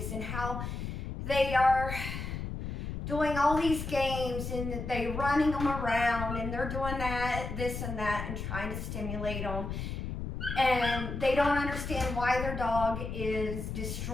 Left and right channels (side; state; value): left; noise; rumble, 5 dB below the sound